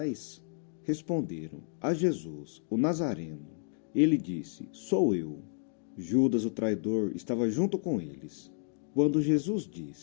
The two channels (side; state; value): right; silent; digital silence